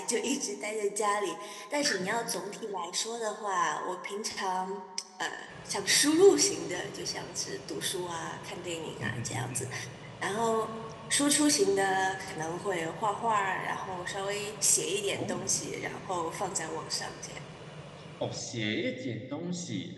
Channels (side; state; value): both; identical; correlation 1.00